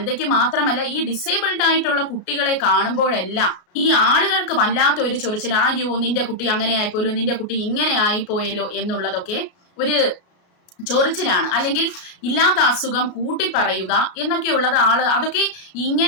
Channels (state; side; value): late; right; 34 ms